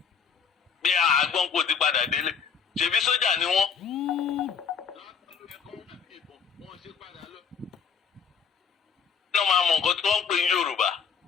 bí àgbọn kò ti padà délé ṣèbí sójà ni wọ́n. náà máa mọ nǹkan tí wọ́n ń pè ní Yorùbá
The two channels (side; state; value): right; quieter; 6.6 dB